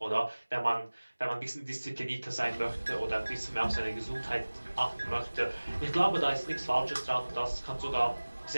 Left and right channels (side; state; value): both; inverted; correlation -1.00